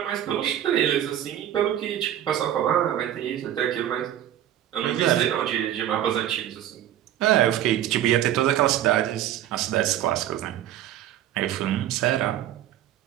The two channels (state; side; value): quieter; left; 11.7 dB